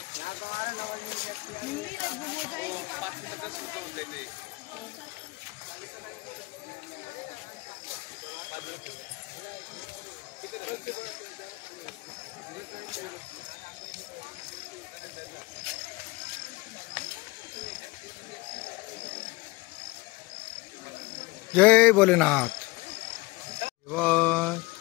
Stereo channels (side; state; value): right; quieter; 23.0 dB